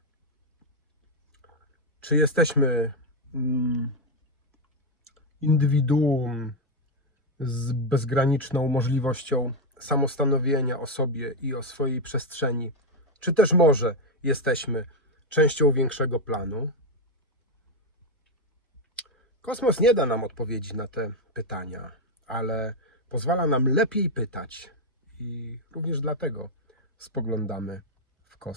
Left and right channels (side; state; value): both; normal; correlation 0.05